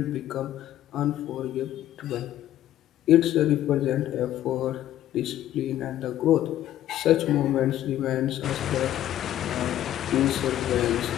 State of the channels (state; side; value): quieter; right; 12.6 dB